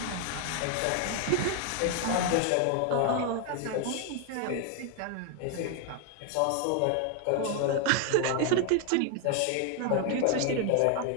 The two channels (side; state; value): both; different; correlation 0.01